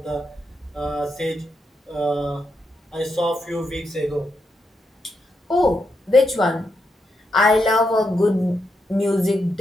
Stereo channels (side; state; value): both; normal; correlation 0.83